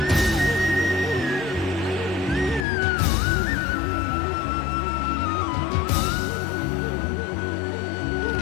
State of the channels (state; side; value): drops out; right; at 2.7 s